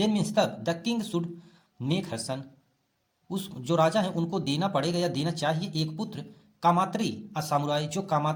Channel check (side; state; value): both; identical; correlation 1.00